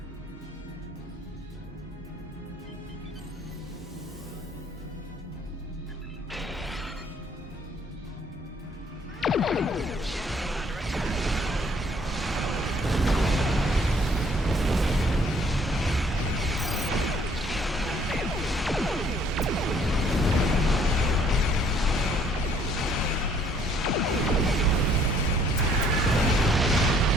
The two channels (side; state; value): both; normal; correlation 0.62